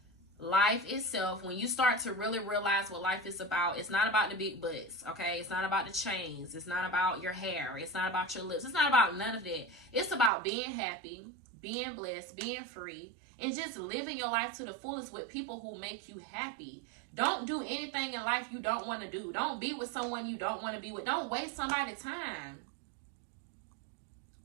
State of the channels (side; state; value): left; drops out; at 10.3 s